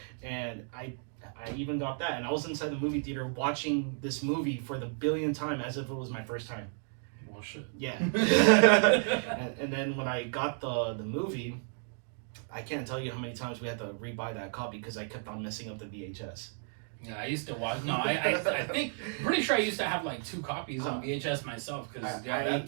and I even got that, and I was inside the movie theater watching this movie for the billionth time as if it was my first time. Well, shit. Yeah. and then when I got the movie, I can't tell you how many times we had to rebuy that copy because I kept on messing up the VHS. Yeah, I used to watch. No, I think, pretty sure I used to have like 2 copies on VHS myself because that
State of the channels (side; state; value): left; silent; 56 dB below the other